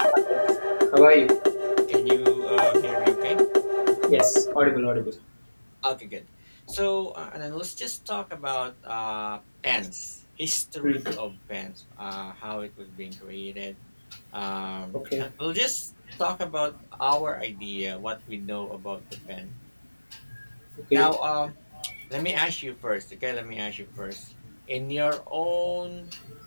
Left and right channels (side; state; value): both; inverted; correlation -1.00